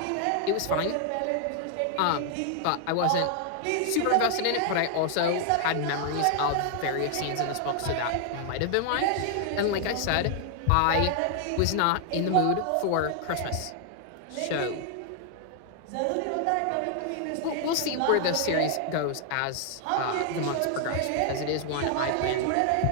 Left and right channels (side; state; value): both; different; correlation 0.00